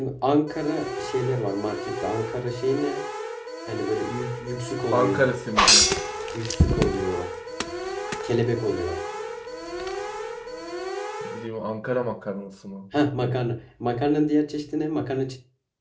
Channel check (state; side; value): identical; both; correlation 1.00